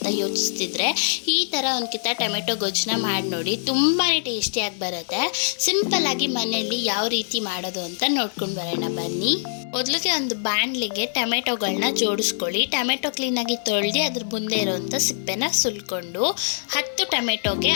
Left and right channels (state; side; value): silent; right; digital silence